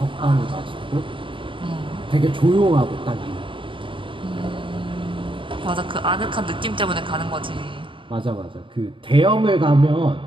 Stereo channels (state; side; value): late; left; 0.25 ms